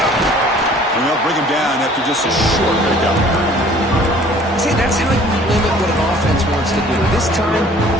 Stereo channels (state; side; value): normal; both; correlation 0.53